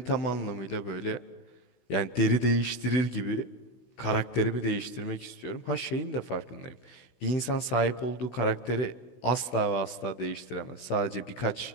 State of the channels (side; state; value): right; late; 16 ms